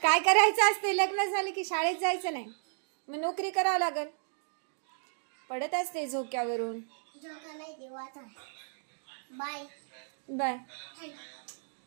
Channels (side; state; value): left; silent; digital silence